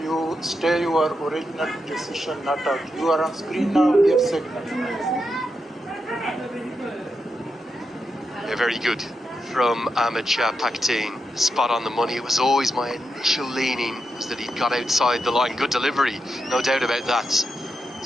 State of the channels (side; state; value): both; normal; correlation 0.86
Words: you stay your original decision, not out. You are on screen now, give signal. Yeah, very good. from Ahmed Shah Pakhtine. Spot on the money. It was always my initial leaning was that he'd got outside the line. Good delivery, no doubt about that.